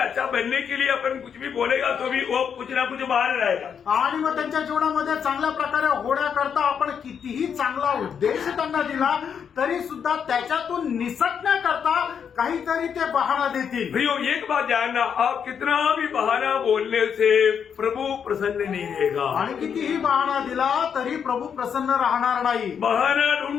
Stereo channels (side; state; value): right; quieter; 7.4 dB